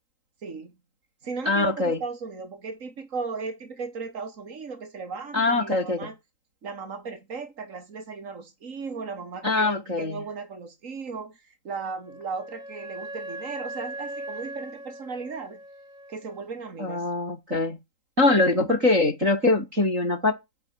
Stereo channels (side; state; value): left; late; 3.8 ms